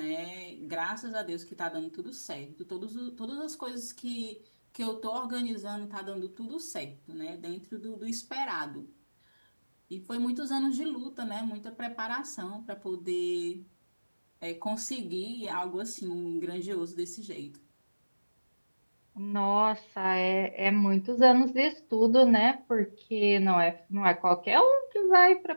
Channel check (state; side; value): inverted; both; correlation -1.00